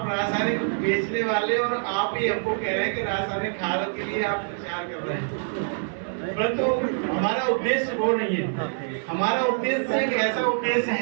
रासायनिक बेचने वाले और आप ही हमको कह रहे हैं कि रासायनिक खाद के लिए आप प्रचार कर रहे हैं, परंतु हमारा उद्देश्य वो नहीं है। हमारा उद्देश्य एक ऐसा उद्देश्य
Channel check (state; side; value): silent; left; digital silence